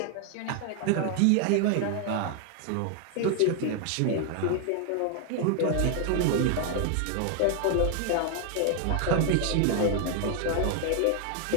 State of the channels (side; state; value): both; different; correlation 0.00